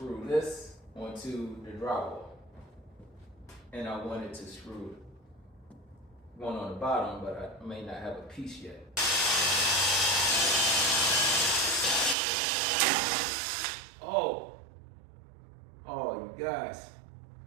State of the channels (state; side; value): drops out; left; at 12.2 s